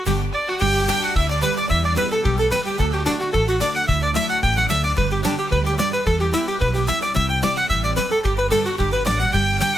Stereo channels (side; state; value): both; normal; correlation 0.86